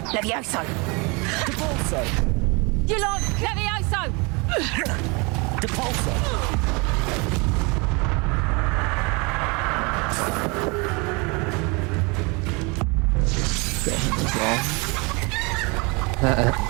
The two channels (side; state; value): left; quieter; 29.0 dB